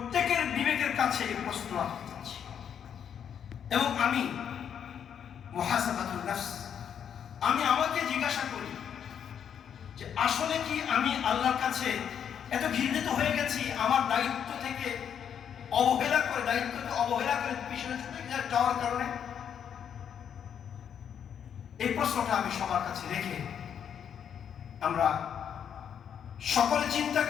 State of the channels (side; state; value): right; quieter; 8.4 dB